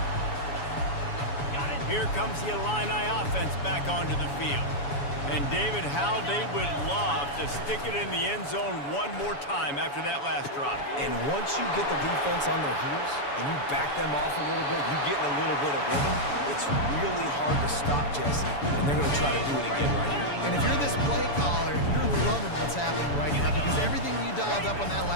Here comes the Illini offense back onto the field. And David, how they would love to stick it in the end zone one more time after that last drive. And once you get the defense on their heels and you back them off a little bit, you get in a little bit of rhythm, it's really hard to stop, Jesse, and they're going to try to do it again right here. And if you're this play caller, you're loving what's happening right now because everything you dialed up on that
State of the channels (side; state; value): right; late; 7.0 ms